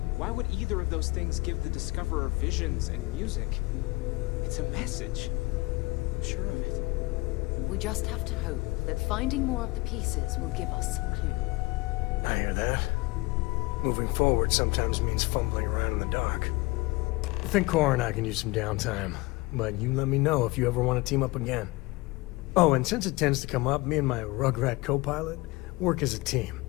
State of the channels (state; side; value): quieter; right; 22.7 dB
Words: Why would either of those things give the Discoverer visions and music? It's a message. I'm sure of it. We just have to hope that finding more of the pieces will give us some clue. I hear that. Moving forward sometimes means fumbling around in the dark. I think Cora and I can use some downtime, but you let me know if you ever want to team up again. Oh, and since it tends to come up, me and my Rugrat co-pilot work as a team.